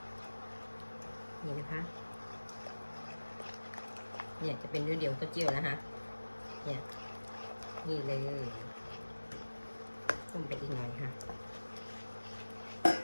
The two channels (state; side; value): inverted; both; correlation -1.00